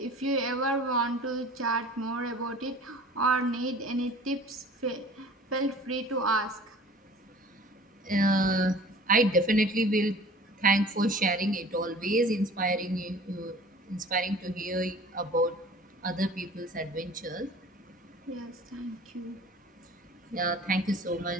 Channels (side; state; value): both; normal; correlation 0.45